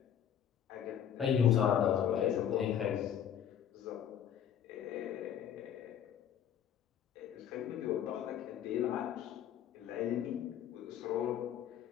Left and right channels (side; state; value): right; quieter; 9.5 dB